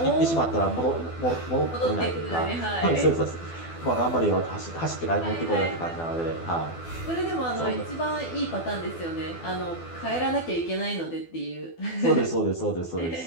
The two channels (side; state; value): right; late; 12 ms